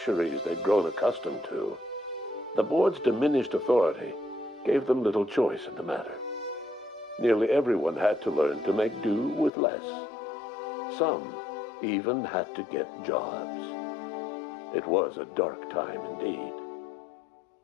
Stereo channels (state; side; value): drops out; right; at 9.5 s